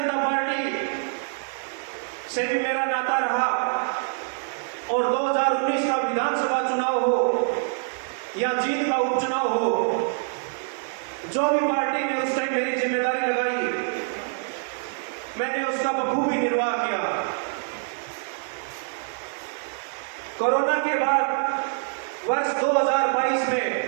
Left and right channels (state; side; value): silent; left; 61 dB below the other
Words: पार्टी से भी मेरा नाता रहा। और 2019 का विधानसभा चुनाव हो या जीत का उपचुनाव हो, जो भी पार्टी ने उस टाइम मेरी जिम्मेदारी लगाई, मैंने उसका बखूबी निर्वाह किया। कोरोना के बाद वर्ष 2022 में